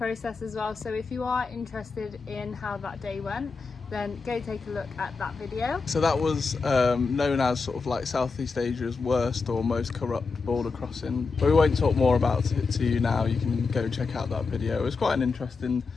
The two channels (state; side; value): quieter; right; 4.5 dB